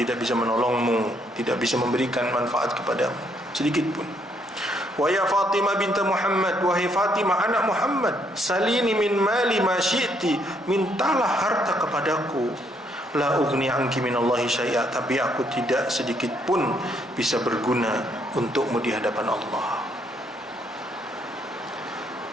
bisa menolongmu, tidak bisa memberikan manfaat kepadamu sedikit pun. Wa ya Fatimah binti Muhammad, wahai Fatimah anak Muhammad, salini min mali ma syi'ti, mintalah harta kepadaku, la ugni anki minallahi syai'a, tapi aku tidak sedikit pun bisa berguna untukmu di hadapan Allah.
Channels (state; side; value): normal; both; correlation 0.71